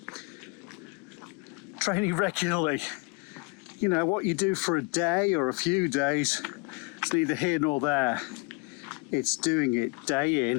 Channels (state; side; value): quieter; right; 29.4 dB